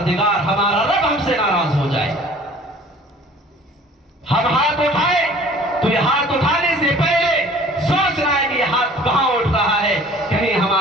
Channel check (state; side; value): normal; both; correlation 0.49